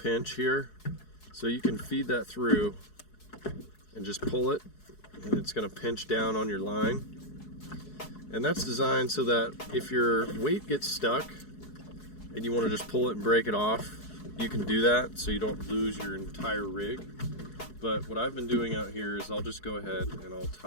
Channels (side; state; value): right; late; 4.7 ms